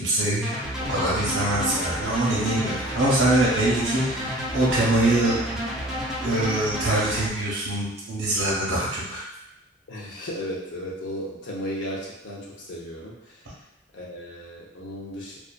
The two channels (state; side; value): normal; both; correlation 0.45